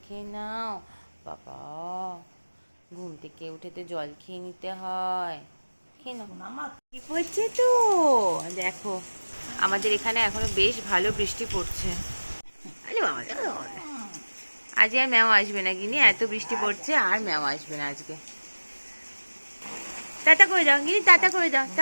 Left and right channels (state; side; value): inverted; both; correlation -1.00